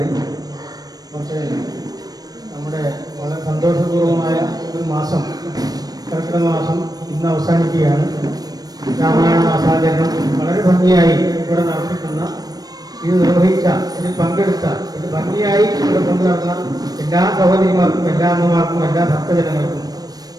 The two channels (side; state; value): left; late; 0.19 ms